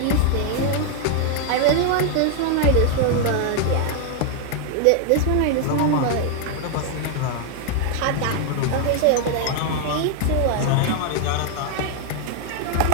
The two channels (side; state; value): both; different; correlation 0.00